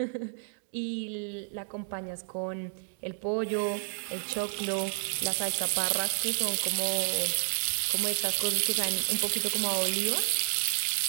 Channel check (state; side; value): silent; left; digital silence